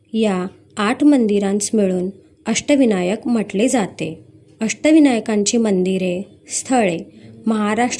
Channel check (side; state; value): both; identical; correlation 1.00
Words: या 8 मंदिरांस मिळून अष्टविनायक म्हटले जाते. अष्टविनायकांची मंदिरे, स्थळे